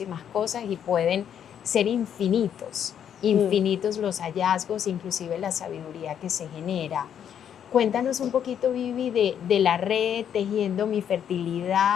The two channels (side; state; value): right; quieter; 9.0 dB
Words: cosas y pueden ser infinitos, mm. infinitos los hallazgos, inclusive la sabiduría que se genera. Cuéntanos un poquito, Vivi, de la red Tejiendo mi